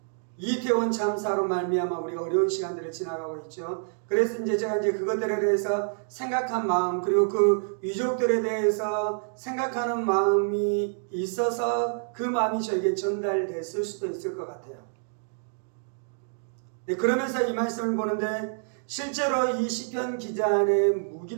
이태원 참사로 말미암아 우리가 어려운 시간들을 지나가고 있죠. 그래서 제가 그것들에 대해서 생각한 마음 그리고 그 유족들에 대해서 생각하는 마음이 있어서 그 마음이 저에게 전달됐을 수도 있을 것 같아요. 네, 그러면서 이 말씀을 보는데 실제로 이 시편 기자 안에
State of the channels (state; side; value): silent; left; digital silence